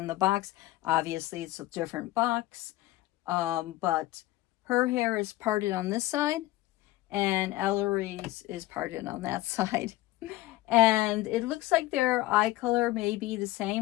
the box, obviously it's a different box. But her hair is parted on this side and Ellory's is parted on that side. And it looks like their eye color may be the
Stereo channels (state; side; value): quieter; right; 17.4 dB